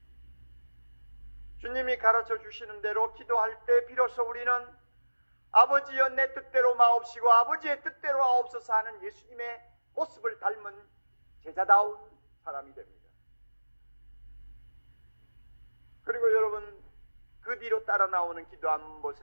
주님이 가르쳐 주시는 대로 기도할 때 비로소 우리는 아버지여 내 뜻대로 마옵시고 아버지의 뜻대로 하옵소서 하는 예수님의 모습을 닮은 제자다운 사람이 됩니다. 그리고 여러분 그 뒤로 따라 나오는 기도 한번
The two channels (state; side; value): inverted; both; correlation -1.00